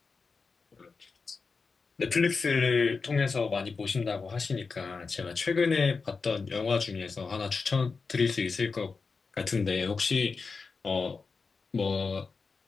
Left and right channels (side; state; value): right; quieter; 4.7 dB